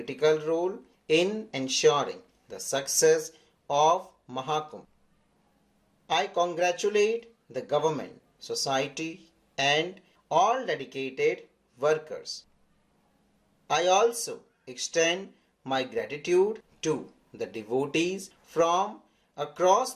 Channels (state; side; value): identical; both; correlation 1.00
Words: role in ensuring the success of Mahakum. I congratulate the government, society, and all dedicated workers. I also extend my gratitude to the devotees from across